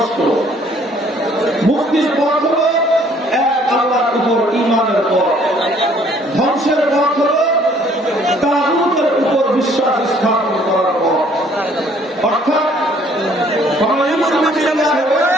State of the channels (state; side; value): normal; both; correlation 0.60